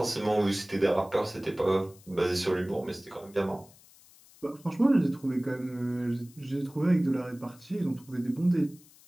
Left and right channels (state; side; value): noise; left; hiss, 25 dB below the sound